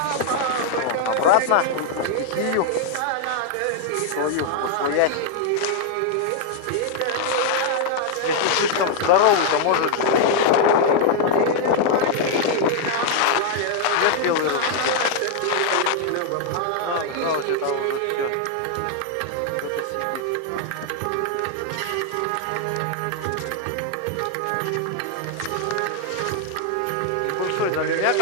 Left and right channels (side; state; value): both; different; correlation 0.00